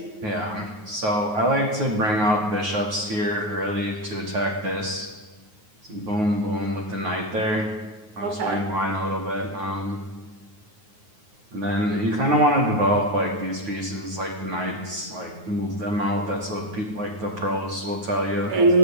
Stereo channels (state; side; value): late; left; 9.5 ms